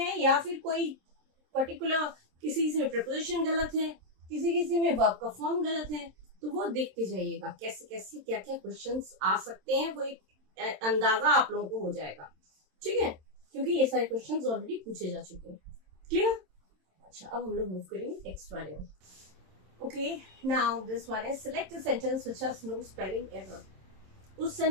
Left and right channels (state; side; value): late; left; 27 ms